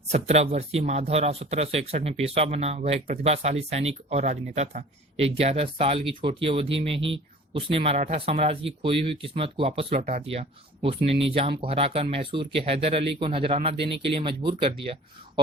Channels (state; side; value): normal; both; correlation 0.45